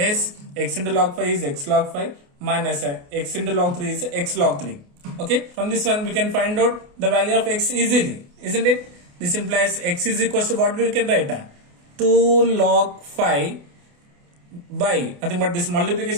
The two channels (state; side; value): late; left; 28 ms